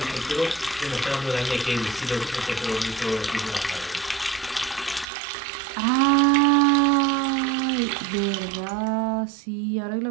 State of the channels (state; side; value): drops out; left; at 5.1 s